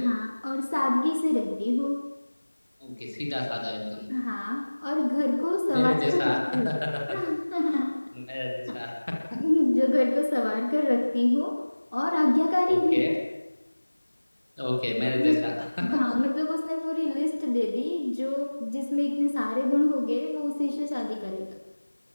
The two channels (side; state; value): both; inverted; correlation -1.00